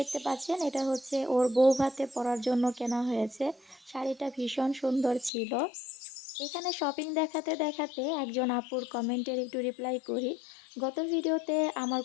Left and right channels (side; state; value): right; drops out; at 5.3 s